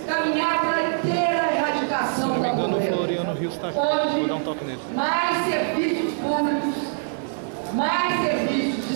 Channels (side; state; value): left; silent; digital silence